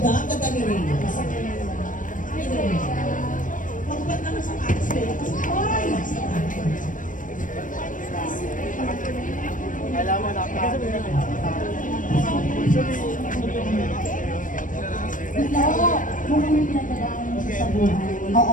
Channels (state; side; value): late; right; 0.38 ms